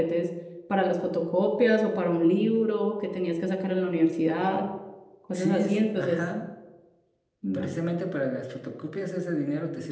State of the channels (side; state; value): both; identical; correlation 1.00